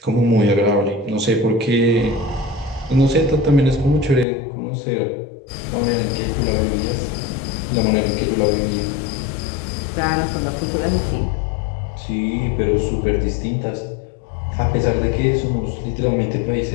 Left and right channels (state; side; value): drops out; right; at 4.2 s